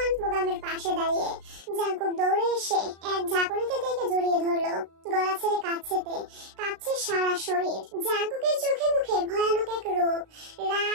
বোগামের পাশে দাঁড়িয়ে। জাঙ্কুক দৌড়ে এসে এক ঝাঁকুনিতে থেকে জড়িয়ে ধরলো। গলা ছেড়ে কাঁদছে তে, কাঁপছে সারা শরীর। জাঙ্কুকের চোখে মুখে ভয়ানক এক রূপ,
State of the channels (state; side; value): late; left; 36 ms